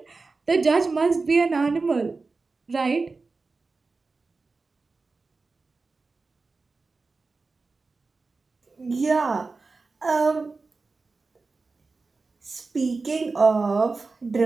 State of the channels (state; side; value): quieter; left; 4.0 dB